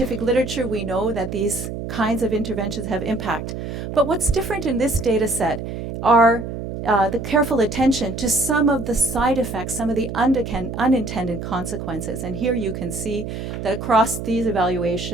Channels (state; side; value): noise; right; hum, 6 dB below the sound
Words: literature, we know that these kinds of interventions have impact. But what's different in this data set are the careful attention to some of the side effects, some of the unintended consequences. And here you can see that across these